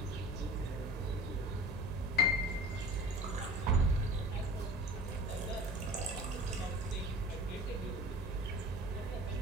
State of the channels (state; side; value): normal; both; correlation 0.42